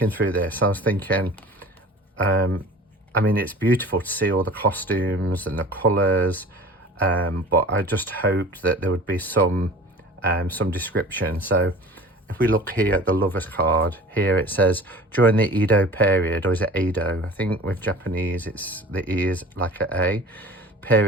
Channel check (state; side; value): normal; both; correlation 0.42